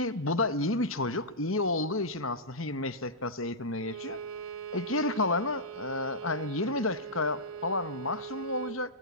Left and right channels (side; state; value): both; normal; correlation -0.13